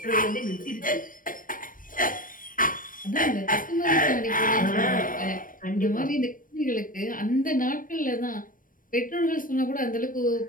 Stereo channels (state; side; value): late; right; 0.40 ms